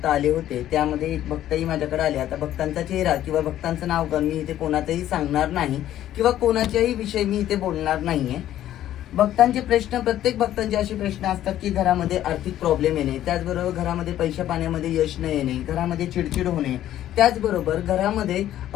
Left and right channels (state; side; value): quieter; right; 12.4 dB